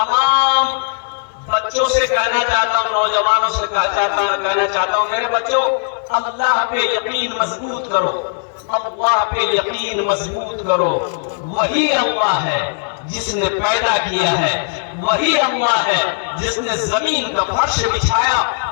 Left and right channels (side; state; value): right; silent; digital silence